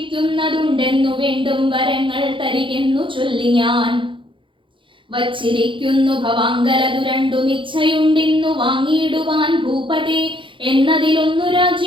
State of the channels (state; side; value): late; left; 0.25 ms